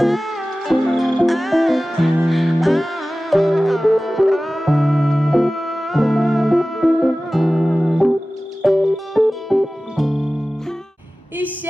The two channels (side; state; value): both; normal; correlation 0.97